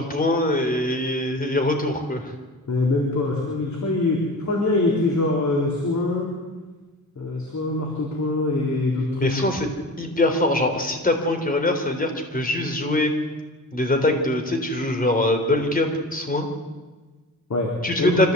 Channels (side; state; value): both; normal; correlation 0.35